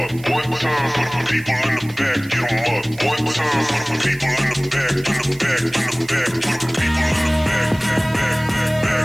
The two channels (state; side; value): noise; right; hiss, 21 dB below the sound